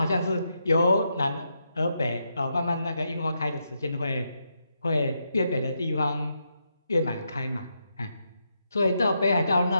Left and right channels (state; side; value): inverted; both; correlation -0.82